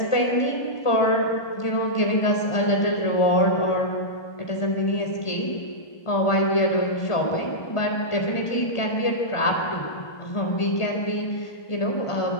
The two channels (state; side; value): late; right; 1.4 ms